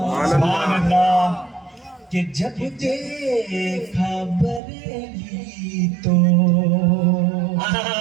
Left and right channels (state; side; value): drops out; left; at 4.6 s